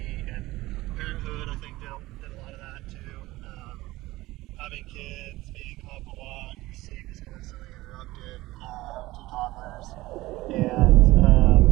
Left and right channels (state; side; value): quieter; left; 18.6 dB